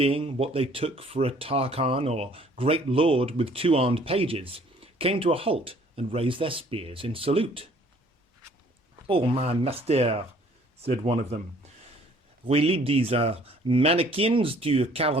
what they took for a Tarkan or great lord with two armed pages, came to a halt and raised their spears in salute. "Oh, my master," said one of them, "we lead these mannequins to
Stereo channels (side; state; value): both; normal; correlation 0.58